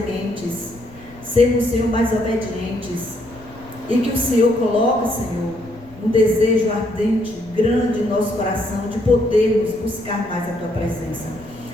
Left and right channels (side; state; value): left; noise; rumble, 23 dB below the sound